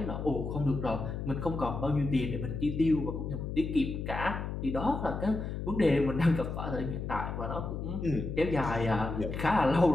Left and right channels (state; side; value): noise; left; hum, 5 dB below the sound